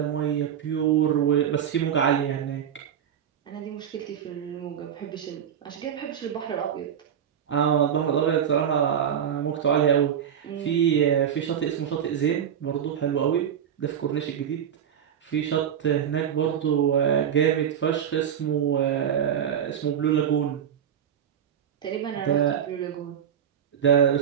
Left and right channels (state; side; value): quieter; left; 8.9 dB